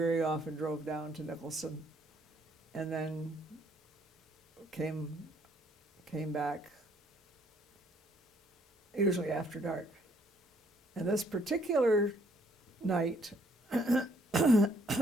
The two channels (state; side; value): normal; both; correlation 0.66